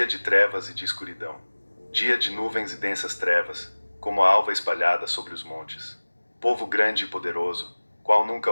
de trevas e de escuridão. Dia de nuvens e densas trevas, como a alva espalhada sobre os montes. Povo grande e poderoso, qual nunca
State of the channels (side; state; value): both; inverted; correlation -1.00